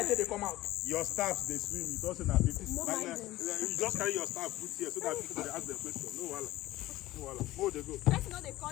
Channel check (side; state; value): right; quieter; 16.5 dB